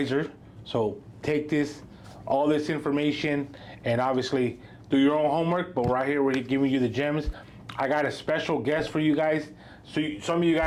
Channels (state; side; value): identical; both; correlation 1.00